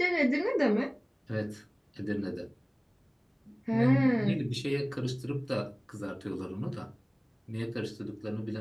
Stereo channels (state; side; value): identical; both; correlation 1.00